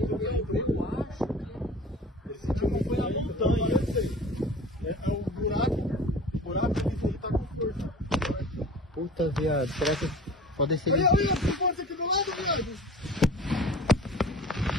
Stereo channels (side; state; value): both; normal; correlation 0.41